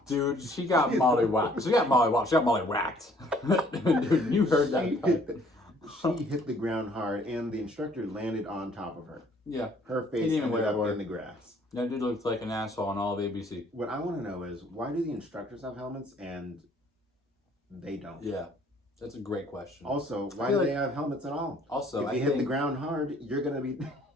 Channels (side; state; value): both; normal; correlation 0.59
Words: Dude, she got mollywopped. She got mollywopped. She got mollywacked. Dude, you heard that. She hit the ground hard, and the instructor landed on top of her. Yeah. Her face Didn't even ended wear up a word. in the grass. That dude looks like an asshole on all of ABC. What I want to know is, why do the instructors have helmets and they don't? Yeah. That's a great question. Also, why feel do they like- have helmets at all? Also, if I you hit the think, ground hard, you're going to be...